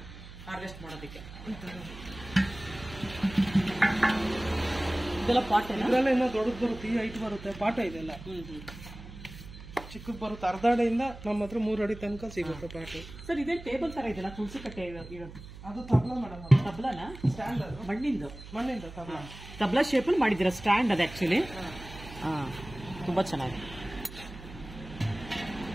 ಹಾರ್ವೆಸ್ಟ್ ಮಾಡೋದಕ್ಕೆ. ಇದೆಲ್ಲ ಪಾಟ್ ಇದೆಲ್ಲ ಇನ್ನೂ ದೊಡ್ಡದು ಬರುತ್ತೆ. ಈ ಹೈಟ್ ಬರುತ್ತೆ. ಪಾಠ ಇದೆಲ್ಲ ಚಿಕ್ಕದು ಬರುತ್ತೆ. ಅರ್ಧ ಅಡಿಯಿಂದ ನಮ್ಮ ಹತ್ರ 3 ಅಡಿ ತನಕ ಸಿಗುತ್ತೆ ಪಾಠ. ಸರ್, ಇದೇ ಟೇಬಲ್ ತರ ಇದೆಯಲ್ಲ, ತುಳಸಿ ಕಟ್ಟೆ ಇರೋದು? ಅದು ತಬ್ಲಾ ಮೇಡಮ್. ತಬ್ಲಾನ? ಸ್ಟ್ಯಾಂಡ್. ಅದು ಮಣ್ಣಿಂದ ತಬ್ಲಾ ಶೇಪಲ್ಲಿ ಮಾಡಿದ್ದೀರಾ ಸ್ಟ್ಯಾಂಡ್ ಅದು ಆಕ್ಚುಲಿ. ತುಂಬಾ ಚೆನ್ನಾಗಿದೆ.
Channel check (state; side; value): noise; right; hum, 15 dB below the sound